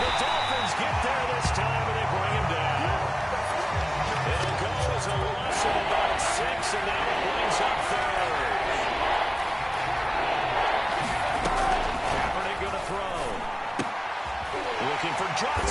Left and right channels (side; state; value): both; identical; correlation 1.00